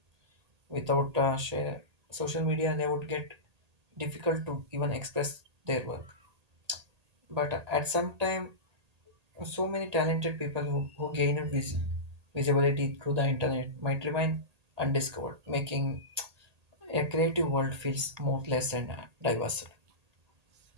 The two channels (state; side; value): late; left; 1.8 ms